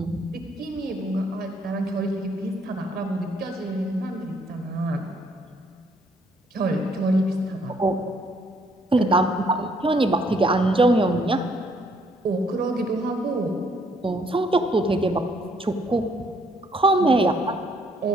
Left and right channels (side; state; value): both; normal; correlation 0.67